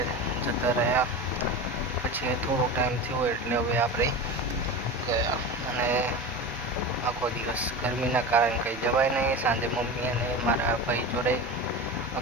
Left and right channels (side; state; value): both; normal; correlation 0.28